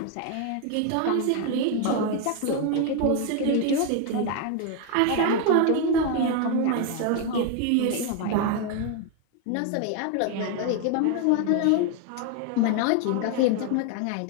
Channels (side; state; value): both; different; correlation 0.01